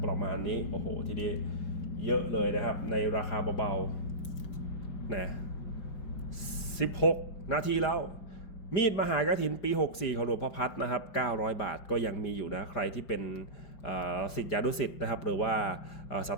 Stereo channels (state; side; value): late; right; 5.0 ms